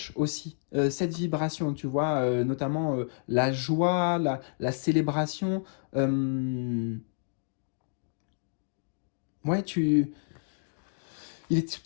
aussi cette vibration, tu vois, notamment la joie, la célébration. euh, ouais, il est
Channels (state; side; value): silent; right; digital silence